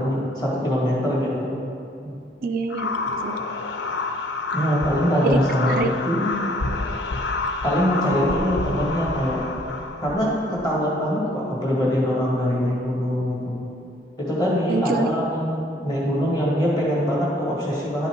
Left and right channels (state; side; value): normal; both; correlation 0.61